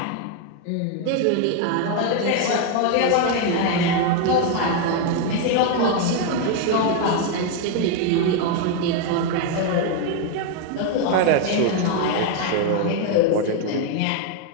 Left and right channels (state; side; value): different; both; correlation 0.01